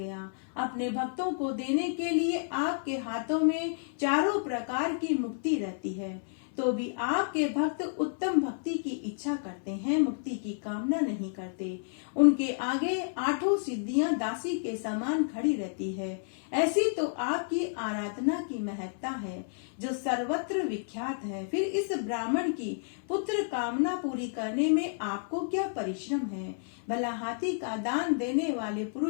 अपने भक्तों को देने के लिए आपके हाथों में चारों प्रकार की मुक्ति रहती है, तो भी आपके भक्त उत्तम भक्ति की इच्छा करते हैं, मुक्ति की कामना नहीं करते। उनके आगे आठों सिद्धियां दासी के समान खड़ी रहती है। ऐसी तो आपकी आराधना की महत्ता है जो सर्वत्र विख्यात है। फिर इस ब्राह्मण की पुत्र कामना पूरी करने में आपको क्या परिश्रम है? भला हाथी का दान देने वाले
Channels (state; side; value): silent; right; 57 dB below the other